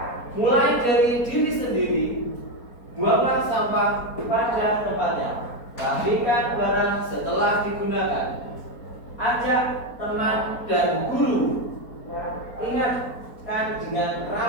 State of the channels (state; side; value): late; right; 4.3 ms